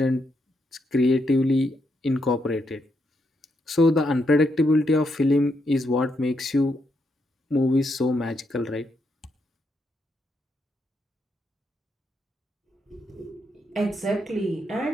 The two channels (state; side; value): normal; both; correlation 0.79